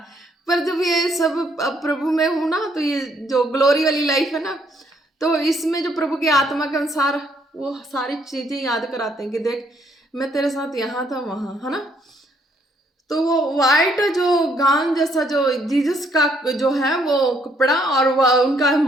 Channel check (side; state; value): both; normal; correlation 0.69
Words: पर जब ये सब अब प्रभु में हूँ ना, तो ये जो ग्लोरी वाली लाइफ है ना, तो इसमें जो प्रभु की आत्मा के अनुसार वो सारी चीज़ें याद कराते हैं कि देख मैं तेरे साथ यहाँ था वहाँ, है ना। तो वो वाइट जो गाउन जैसा जो जीसस का जो है वो कपड़ा, और उनका